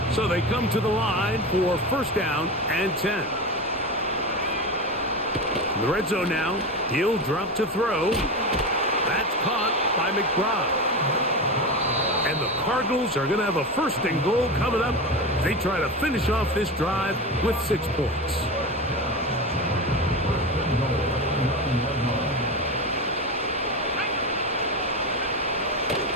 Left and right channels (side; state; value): both; normal; correlation 0.22